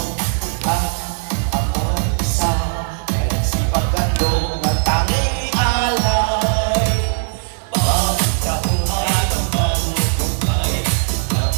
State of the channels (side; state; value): left; silent; digital silence